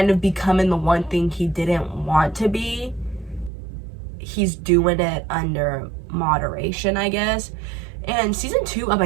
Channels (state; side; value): drops out; left; at 3.5 s